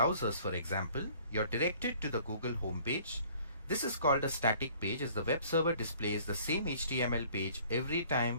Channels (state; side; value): inverted; both; correlation -0.54